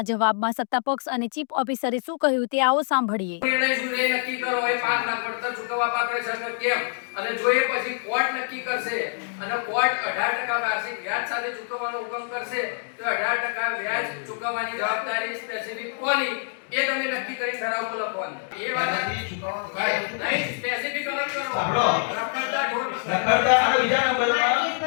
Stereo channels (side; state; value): right; silent; digital silence